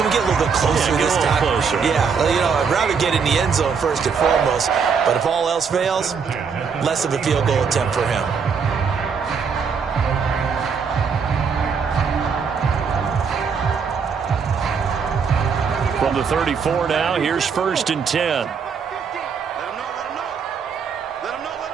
we get a little bit closer this time? Closer. Yeah, I'd rather get in the end zone first and foremost. But if all else fails, less of a field goal attempt for him. From the 34 now, here's 1st and 10. Let him know.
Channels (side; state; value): left; quieter; 6.0 dB